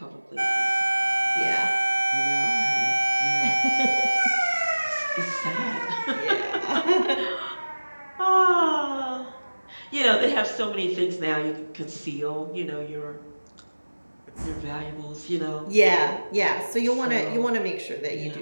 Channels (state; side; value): inverted; both; correlation -1.00